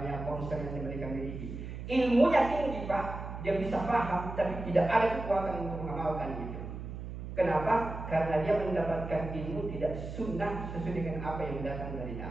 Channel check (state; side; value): noise; right; hum, 8 dB below the sound